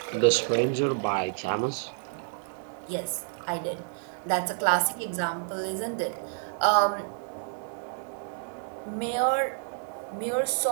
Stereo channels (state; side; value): silent; left; 59 dB below the other